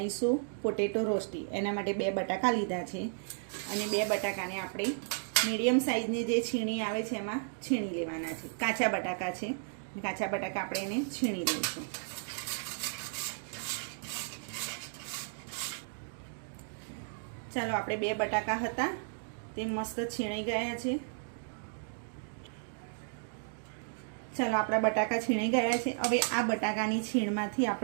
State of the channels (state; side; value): silent; left; digital silence